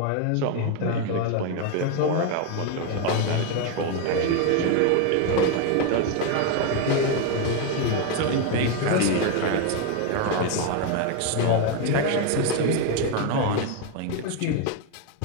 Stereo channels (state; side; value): different; both; correlation 0.02